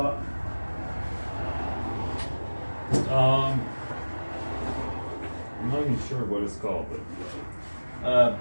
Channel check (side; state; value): both; inverted; correlation -1.00